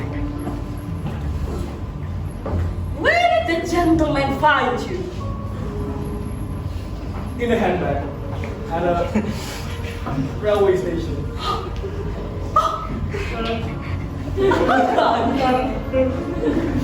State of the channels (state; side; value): identical; both; correlation 1.00